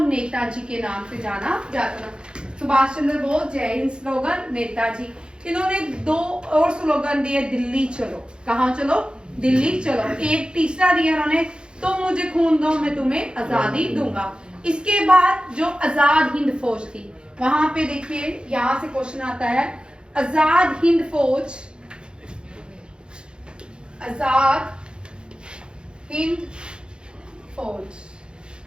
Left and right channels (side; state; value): left; late; 0.051 ms